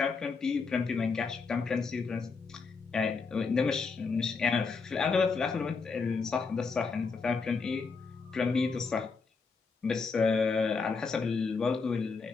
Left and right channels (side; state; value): right; quieter; 4.8 dB